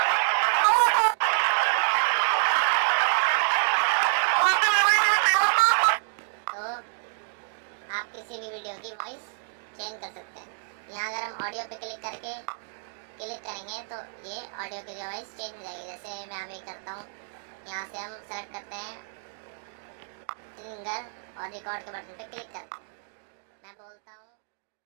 तो आप किसी भी वीडियो की वॉइस चेंज कर सकते हैं। यहाँ अगर हम ऑडियो पे क्लिक करेंगे तो ये ऑडियो की वॉइस चेंज हो जाएगी। जैसे मैं अभी करता हूँ, यहाँ से हम सेलेक्ट करते हैं सिंगर और रिकॉर्ड के बटन पे क्लिक करते हैं।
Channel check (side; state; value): left; silent; digital silence